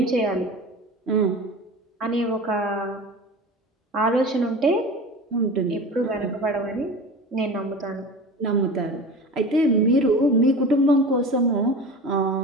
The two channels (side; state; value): both; normal; correlation 0.34